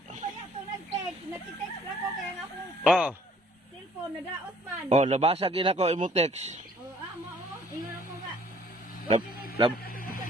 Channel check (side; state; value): both; normal; correlation 0.59